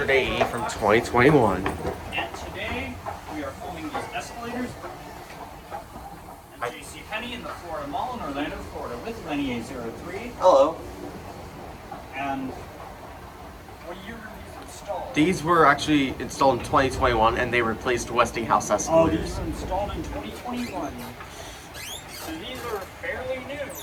AE from 2021. And today we are filming these escalators at JCPenney in the Florida Mall in Orlando, Florida with Lenny A03. Hello. And what year were these installed? These were actually installed in 2021 and they replaced Westinghouse Oh, escalators. these were installed in 2021. So these are fairly new.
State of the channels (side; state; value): both; identical; correlation 1.00